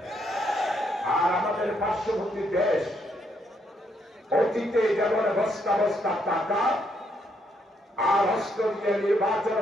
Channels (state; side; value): normal; both; correlation 0.75